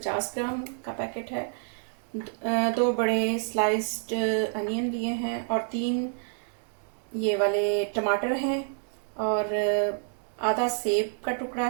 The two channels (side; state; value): left; silent; digital silence